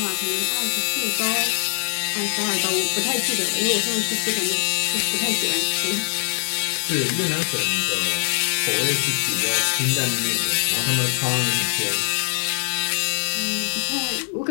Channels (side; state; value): right; silent; digital silence